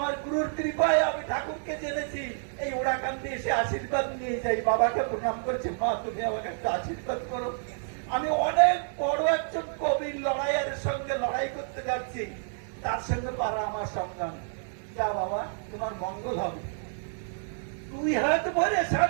গুরুর কৃপায় আমি ঠাকুরকে জেনেছি, এই ওড়াকান্দি এসে আশীর্বাদ নিয়ে যাই। বাবাকে প্রণাম করছে, মা তুমি আমাকে একটা আশীর্বাদ করো, আমি অনেক বড় একজন কবির লড়াইয়ের সঙ্গে লড়াই করতে যাচ্ছি, তার সঙ্গে পারা আমার সংগ্রাম। যা বাবা, তোমার মঙ্গল হবে। দুই হাত ভরে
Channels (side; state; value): left; silent; digital silence